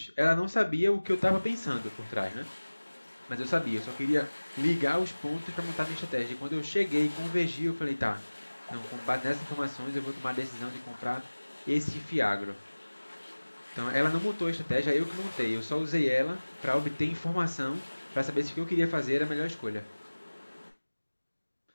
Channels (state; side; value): inverted; both; correlation -1.00